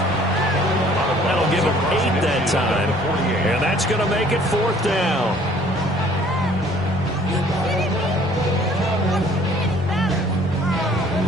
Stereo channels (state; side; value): normal; both; correlation 0.56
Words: That'll give him 8 that time. And that's going to make it 4th down.